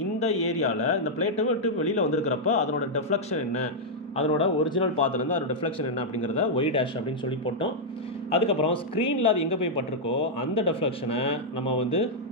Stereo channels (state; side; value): normal; both; correlation -0.05